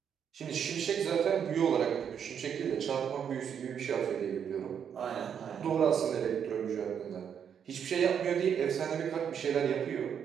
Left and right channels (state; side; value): quieter; left; 8.0 dB